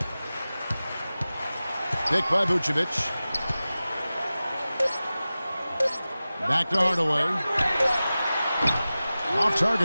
Pick by Vucevic. Back to Hardaway. Off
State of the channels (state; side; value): inverted; both; correlation -0.96